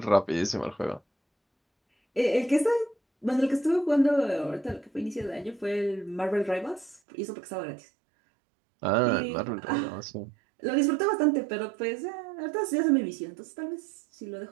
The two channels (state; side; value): drops out; left; at 7.0 s